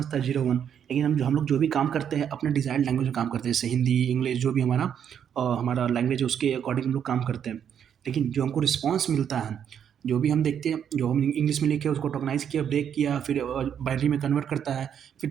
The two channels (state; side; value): quieter; left; 8.6 dB